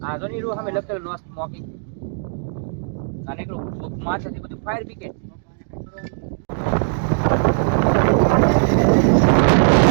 આજો ની હમે લખેલ નો સ્મોકિંગ અને એકલું માથેથી બધું ફાયર બ્રિગેડ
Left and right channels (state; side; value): silent; left; digital silence